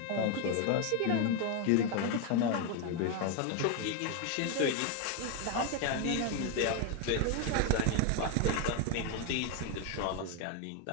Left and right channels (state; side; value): different; both; correlation 0.01